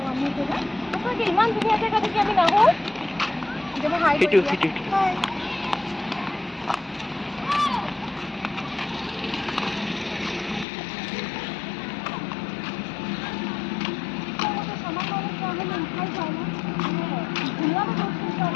ইমান ধুনীয়া জেগা দেখি আমি নাহো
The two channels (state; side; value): drops out; right; at 10.7 s